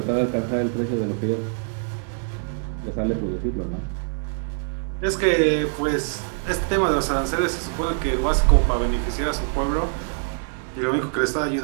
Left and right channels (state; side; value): silent; left; 63 dB below the other